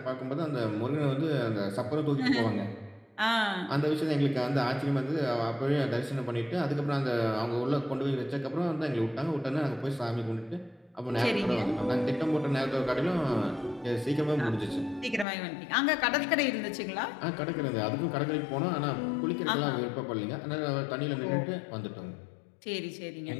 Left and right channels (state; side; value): drops out; right; at 15.2 s